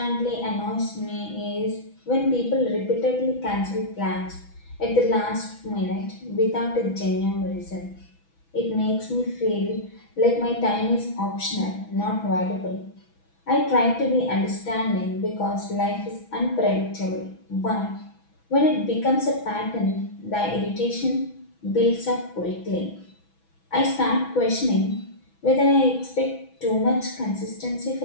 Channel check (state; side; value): late; right; 6.1 ms